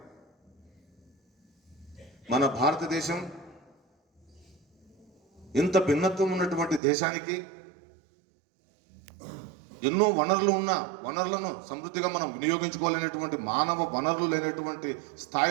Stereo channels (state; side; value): drops out; left; at 6.8 s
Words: మన భారతదేశం ఇంత భిన్నత్వం ఉన్నటువంటి దేశానికి, ఎన్నో వనరులను సమృద్ధిగా మనం వినియోగించుకోలేనటువంటి, మానవ వనరులు లేనటువంటి